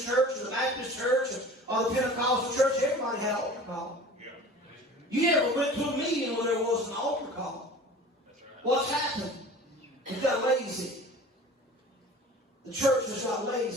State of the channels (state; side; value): normal; both; correlation 0.41